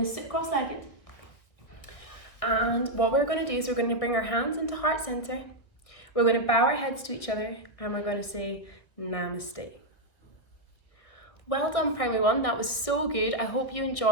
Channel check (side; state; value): right; late; 1.8 ms